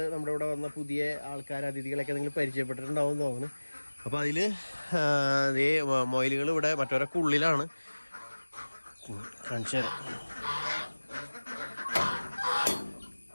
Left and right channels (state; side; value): inverted; both; correlation -1.00